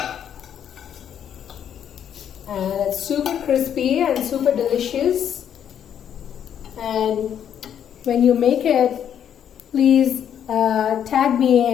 And it's super crispy and super delicious. And when you make it, please tag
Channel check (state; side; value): quieter; right; 9.2 dB